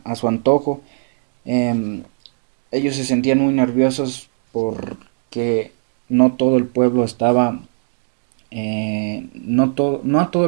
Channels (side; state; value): left; silent; digital silence